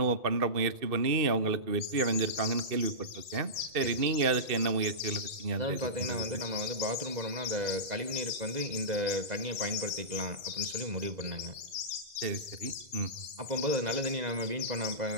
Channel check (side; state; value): left; late; 1.5 ms